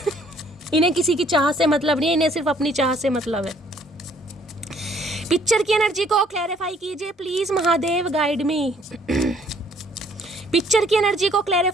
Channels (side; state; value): both; normal; correlation 0.62